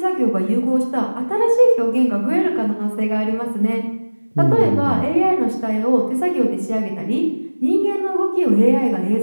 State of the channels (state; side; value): inverted; both; correlation -1.00